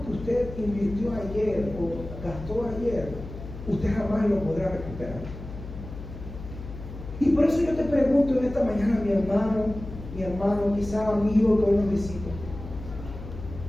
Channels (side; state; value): left; noise; hum, 11 dB below the sound